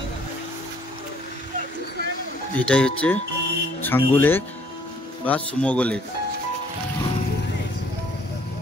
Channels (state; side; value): normal; both; correlation 0.61